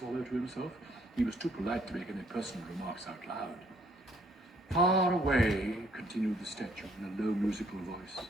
to himself. He was too polite to make any personal remarks out loud. Far away, continued the statue in a low musical voice,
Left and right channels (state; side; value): normal; both; correlation 0.65